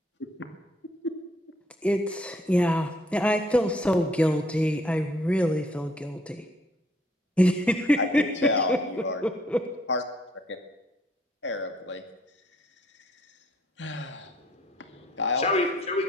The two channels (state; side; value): normal; both; correlation 0.65